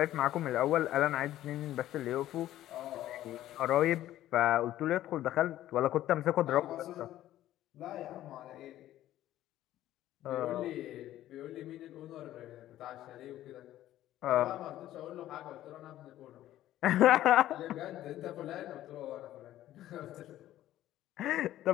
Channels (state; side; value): quieter; right; 13.6 dB